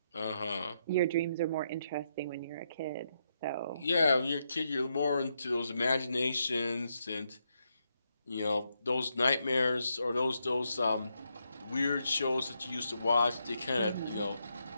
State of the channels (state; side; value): inverted; both; correlation -0.80